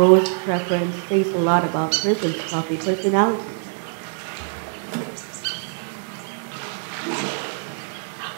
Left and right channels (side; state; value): left; silent; 56 dB below the other